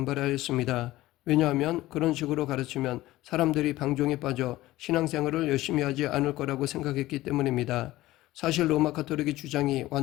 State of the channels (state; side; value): quieter; right; 16.9 dB